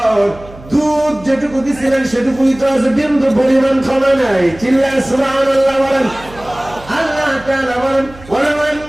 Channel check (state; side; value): noise; right; hum, 20 dB below the sound